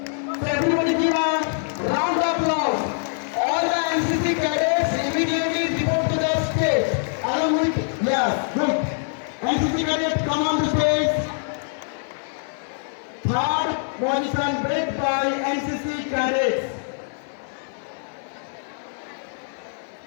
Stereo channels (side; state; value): right; silent; 63 dB below the other